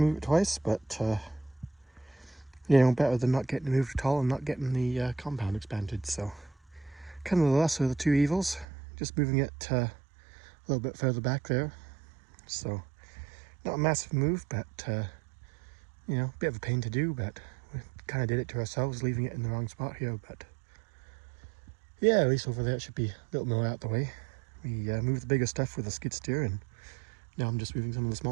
it twice, but you know, better than not getting it moved at all and not getting the compound expanded. So kind of the lesser of the two evils, just moving it a little bit further back there. So not a massive move, but you know, a bit of a pain to do, but we kind of did it to ourselves, leaving it in the wrong spot here. But yeah, at least over there it should be a little more out the way. We moved the bigger stuff with a skid steer, and now I'm just moving some of the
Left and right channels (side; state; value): left; drops out; at 8.7 s